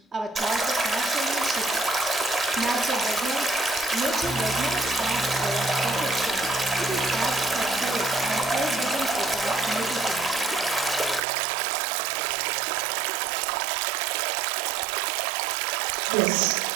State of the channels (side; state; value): left; drops out; at 11.2 s